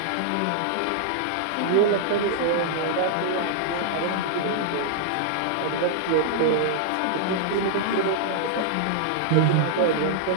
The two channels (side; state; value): both; different; correlation -0.01